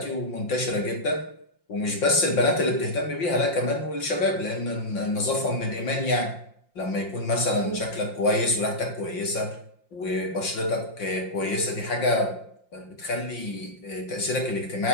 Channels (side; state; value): right; late; 5.7 ms